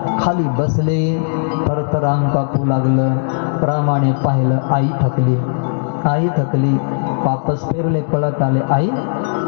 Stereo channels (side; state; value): right; silent; digital silence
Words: खाली बसले, थरथर अंग कापू लागलं. रामाने पाहिलं, आई थकली, आई थकली. वापस फिरले, पळत आले. आई,